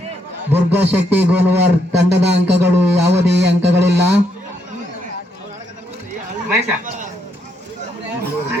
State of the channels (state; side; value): normal; both; correlation 0.76